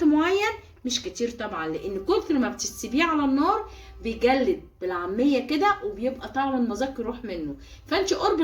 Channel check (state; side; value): identical; both; correlation 1.00